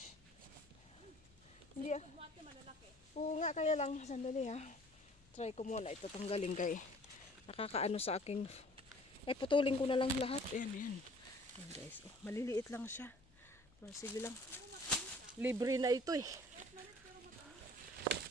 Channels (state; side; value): noise; left; hum, 28 dB below the sound